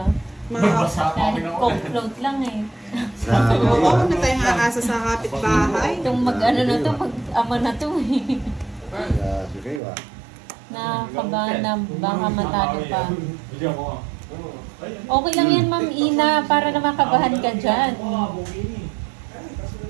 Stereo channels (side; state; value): left; drops out; at 9.8 s